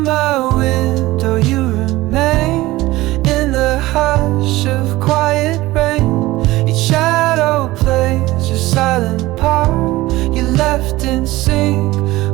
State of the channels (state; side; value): quieter; left; 18.3 dB